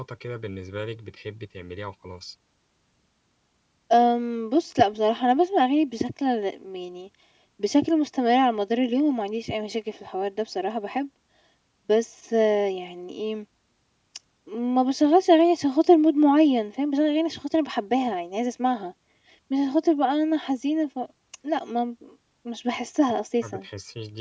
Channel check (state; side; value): identical; both; correlation 1.00